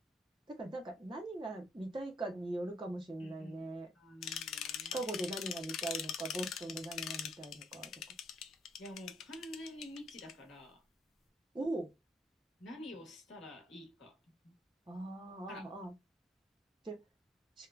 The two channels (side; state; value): both; normal; correlation 0.70